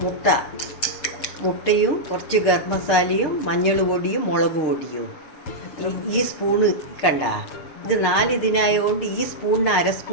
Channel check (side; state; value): right; late; 6.6 ms